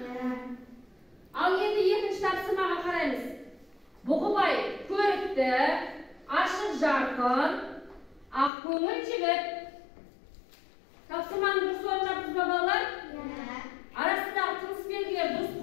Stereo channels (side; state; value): right; drops out; at 8.5 s